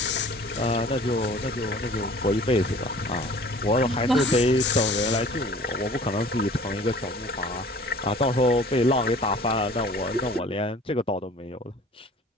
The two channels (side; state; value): both; normal; correlation 0.48